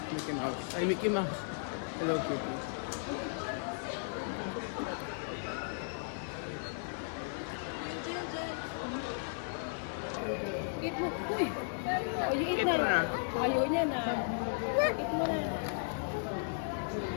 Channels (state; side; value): silent; right; digital silence